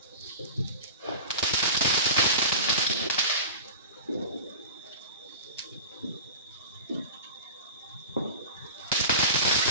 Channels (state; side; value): inverted; both; correlation -0.33